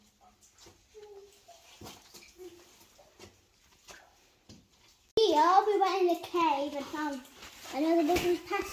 Here we went in the cave and found another little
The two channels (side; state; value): both; identical; correlation 1.00